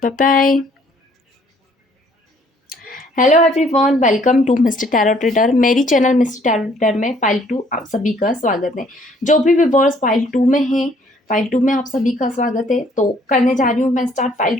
bye bye. Hello everyone, welcome to mister tarot trader. मेरी चैनल मिस्टर टैरो ट्रेडर में फाइल 2 आप सभी का स्वागत है। जो भी व्यूअर्स फाइल 2 में हैं, फाइल 2 में आप सभी का स्वागत है। तो करने जा रही हूँ मैं स्टार्ट फाइल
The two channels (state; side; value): normal; both; correlation 0.62